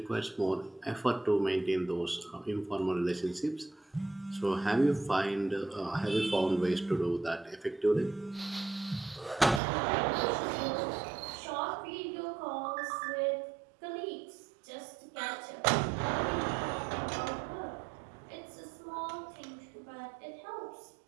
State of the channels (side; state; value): left; drops out; at 9.6 s